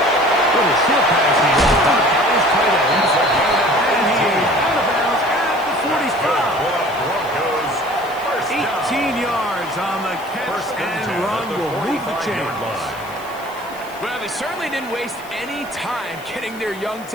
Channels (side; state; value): left; noise; hiss, 21 dB below the sound